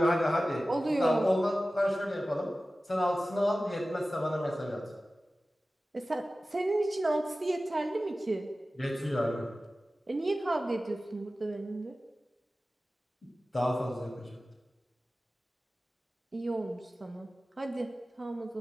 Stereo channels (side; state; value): both; normal; correlation 0.96